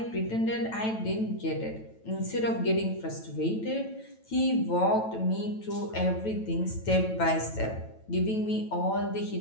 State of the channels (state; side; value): late; right; 9.1 ms